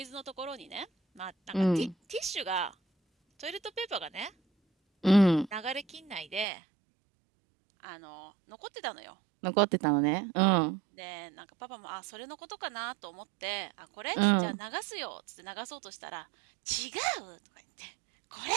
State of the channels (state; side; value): drops out; left; at 6.5 s